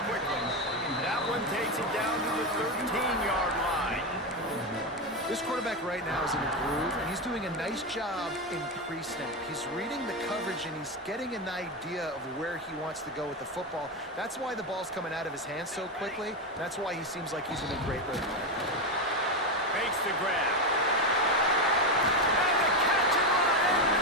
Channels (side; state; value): both; normal; correlation 0.12